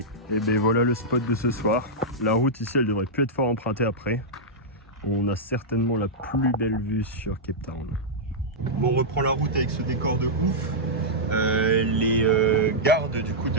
Et voilà le spot de ce soir. La route ici, elle devrait plus être fort empruntée après. On a certainement la plus belle vue sur Cape Town. Bon, on reprend la route avec ce décor de ouf. Les gardes du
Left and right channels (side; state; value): both; normal; correlation -0.10